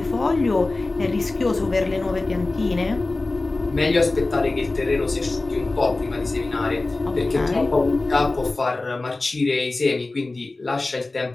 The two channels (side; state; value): right; quieter; 3.2 dB